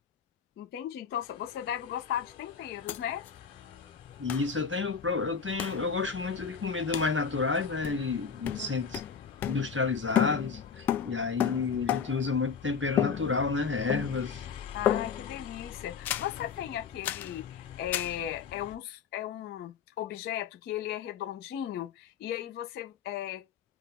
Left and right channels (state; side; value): quieter; right; 6.2 dB